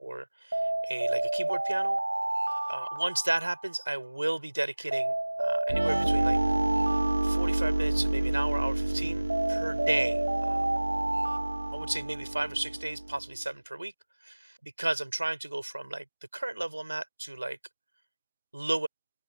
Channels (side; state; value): both; inverted; correlation -1.00